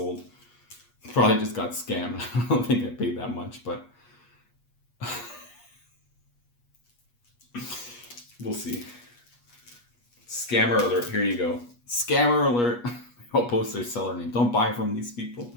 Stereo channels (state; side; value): late; right; 8.3 ms